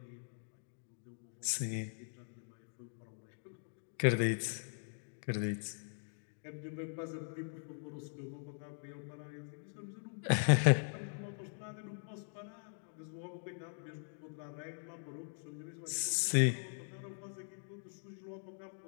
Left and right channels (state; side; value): silent; right; digital silence